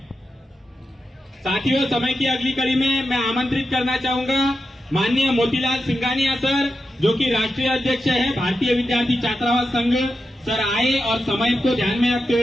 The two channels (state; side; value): normal; both; correlation 0.89